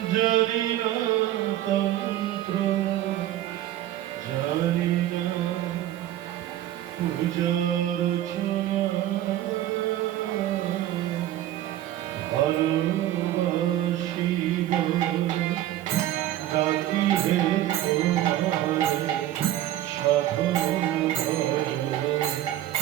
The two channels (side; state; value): left; quieter; 13.2 dB